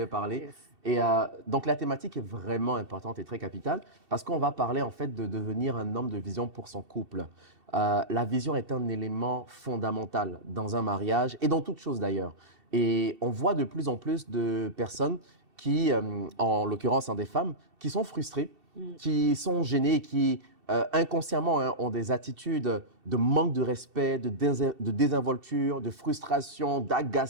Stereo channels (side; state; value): left; late; 2.7 ms